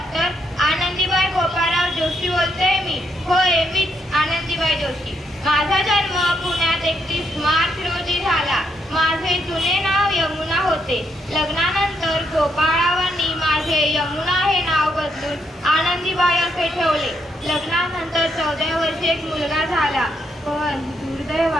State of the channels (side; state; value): both; normal; correlation 0.77